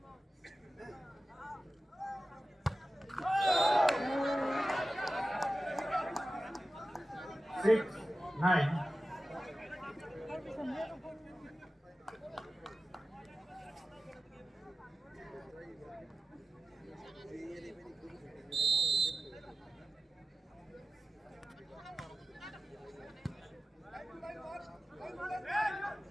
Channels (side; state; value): both; normal; correlation 0.94